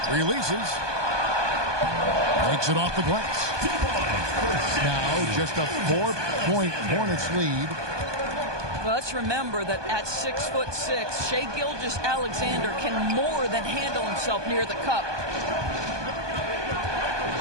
Releases. Takes it off the glass. Now, just a 4-point Hornets lead. Well, let's remember that at 6'6", Shai Gilgeous-Alexander can more than handle himself near the cup.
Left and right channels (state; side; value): late; left; 1.2 ms